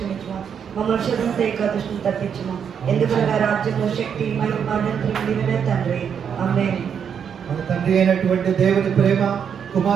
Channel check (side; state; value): left; quieter; 7.6 dB